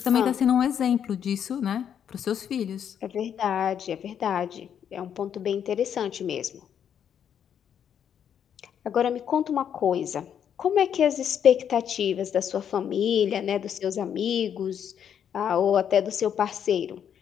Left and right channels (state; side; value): quieter; right; 8.7 dB